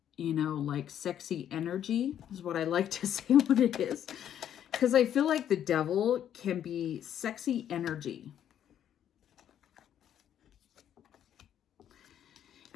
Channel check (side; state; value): right; quieter; 10.1 dB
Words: you know, like sexy energy is what I like to say what it is. Because I feel like the devil can be sexy energy.